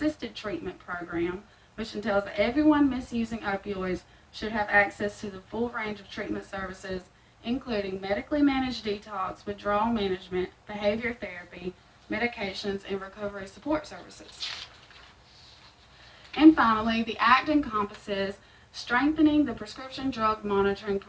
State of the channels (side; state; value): both; identical; correlation 1.00